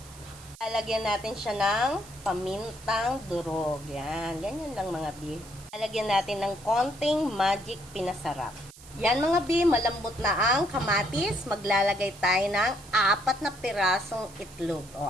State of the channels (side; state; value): right; noise; hiss, 20 dB below the sound